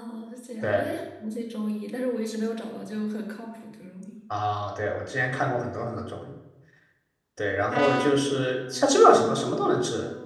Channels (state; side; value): identical; both; correlation 1.00